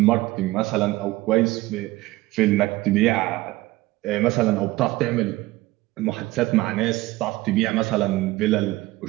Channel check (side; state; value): left; quieter; 18.7 dB